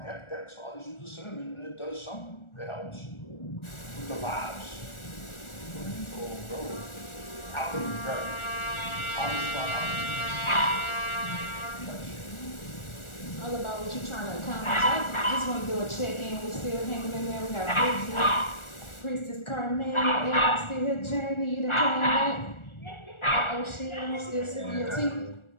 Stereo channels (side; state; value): right; late; 1.4 ms